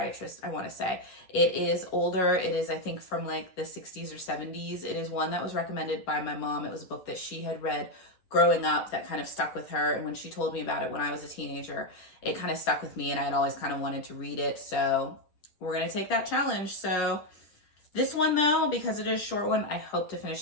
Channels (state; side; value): late; right; 10 ms